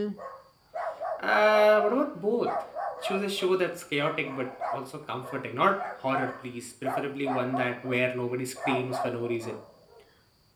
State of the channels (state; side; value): identical; both; correlation 1.00